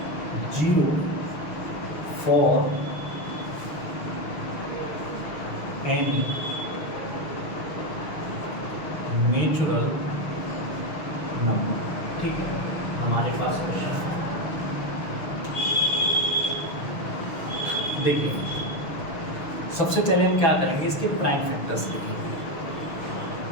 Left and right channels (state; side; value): late; right; 6.3 ms